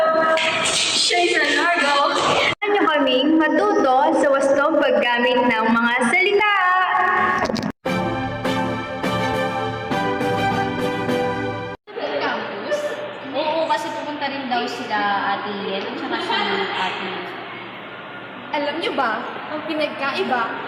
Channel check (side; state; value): both; identical; correlation 1.00